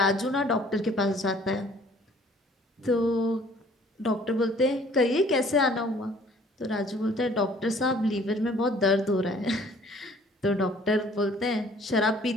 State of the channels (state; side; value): normal; both; correlation 0.55